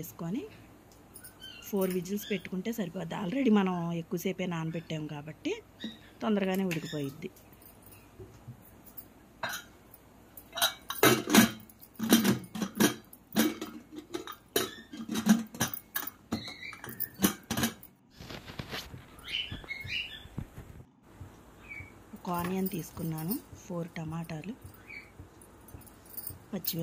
4 విజిల్స్ పెట్టుకుంటే సరిపోద్ది. ఆల్రెడీ మనం ఎక్కువసేపే నానబెట్టాము కాబట్టి తొందరగానే ఉడికిపోయిద్ది. ఒక ఆనియన్ తీసుకున్నాను, 4 టమాటాలు,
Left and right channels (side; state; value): both; identical; correlation 1.00